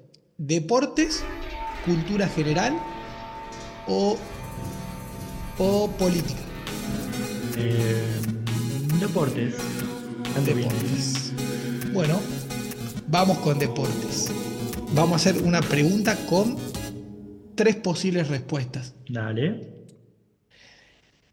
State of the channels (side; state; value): both; identical; correlation 1.00